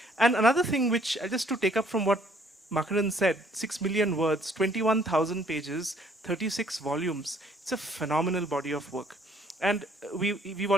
And another thing which, just to take up from what Makarand said, 6 million words, 21,000 pages, 36 volumes. It's a phenomenal body of work. And we've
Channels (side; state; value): both; normal; correlation 0.63